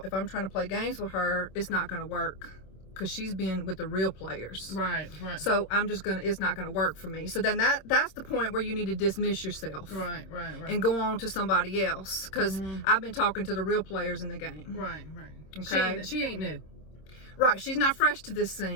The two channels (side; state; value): right; late; 26 ms